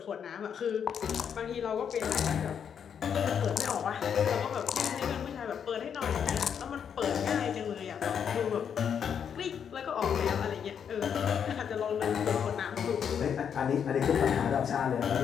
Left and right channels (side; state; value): right; quieter; 7.8 dB